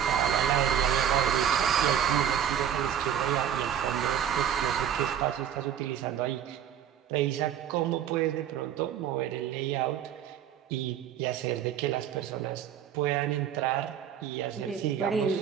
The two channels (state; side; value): quieter; left; 9.3 dB